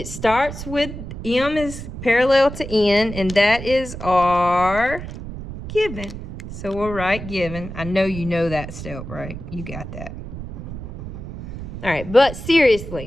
starts with M is parallel to N, and that is our given. So we'll write given. I know you know that step, right? You got that. All right, but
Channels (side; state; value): right; noise; rumble, 10 dB below the sound